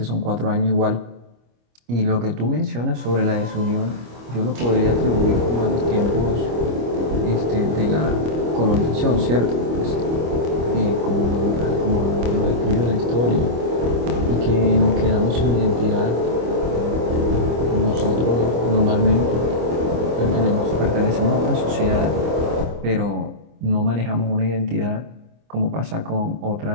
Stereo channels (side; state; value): left; late; 25 ms